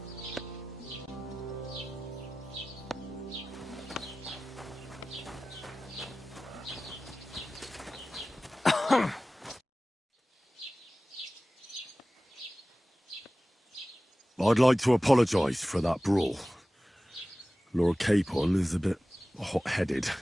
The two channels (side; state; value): both; normal; correlation 0.96